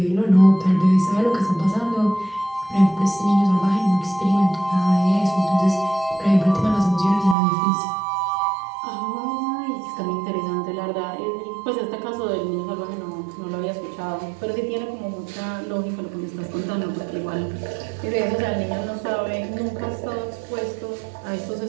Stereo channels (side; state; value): left; drops out; at 7.4 s